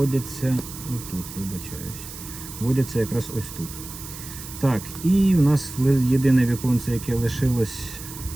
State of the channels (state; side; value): noise; right; hiss, 12 dB below the sound